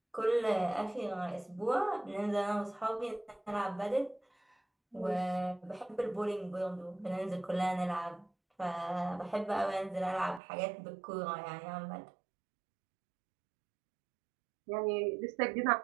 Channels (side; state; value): left; drops out; at 10.4 s